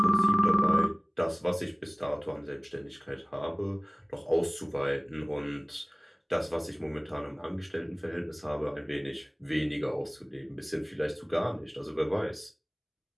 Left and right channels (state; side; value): identical; both; correlation 1.00